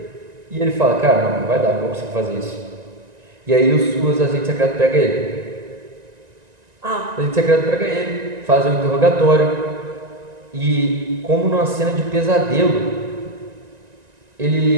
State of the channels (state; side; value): late; left; 1.9 ms